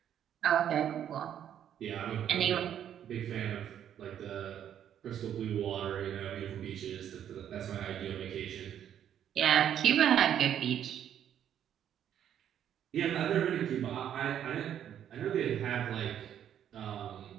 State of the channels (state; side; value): quieter; left; 9.9 dB